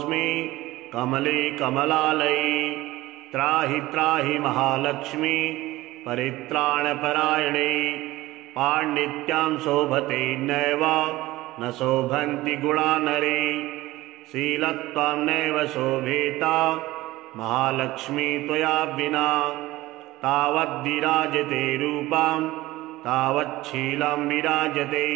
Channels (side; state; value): left; quieter; 18.0 dB